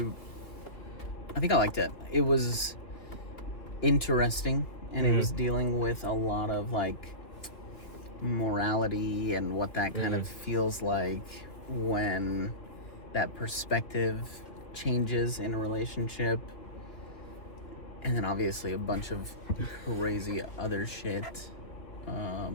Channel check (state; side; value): late; right; 3.0 ms